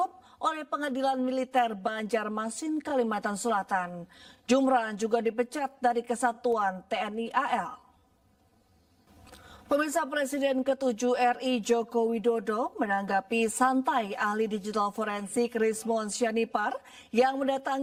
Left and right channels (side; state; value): both; identical; correlation 1.00